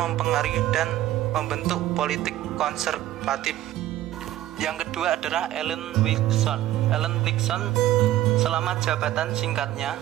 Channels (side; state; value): left; quieter; 14.1 dB